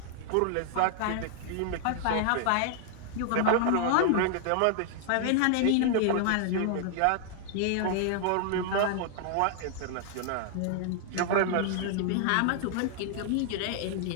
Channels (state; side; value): different; both; correlation -0.01